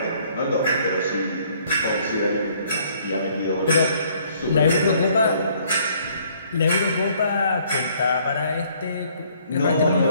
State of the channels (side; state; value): both; inverted; correlation -0.62